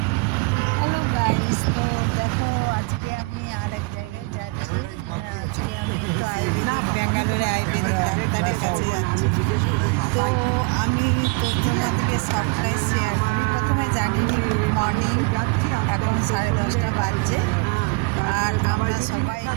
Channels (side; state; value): left; quieter; 28.8 dB